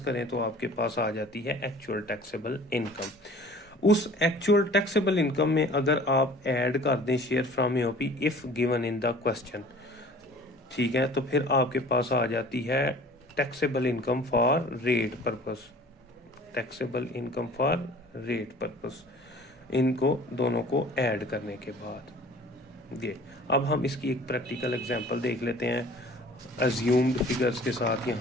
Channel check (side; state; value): both; normal; correlation 0.47